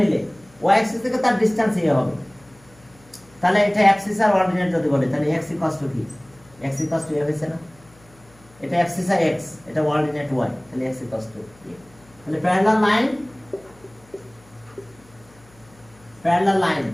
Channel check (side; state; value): left; noise; hum, 27 dB below the sound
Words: নিলে ওয়াই অ্যাক্সিস থেকে তার ডিসটেন্স হবে। তাহলে এটা অ্যাক্সিস আর অর্ডিনেট যদি বলে, তাহলে x ইকুয়ালস টু কি? x ইকুয়ালস টু a হইছে না? এটা অ্যাক্সিস আর x, এটা অর্ডিনেট y, তাহলে x ইকুয়ালস টু a। তাহলে parallel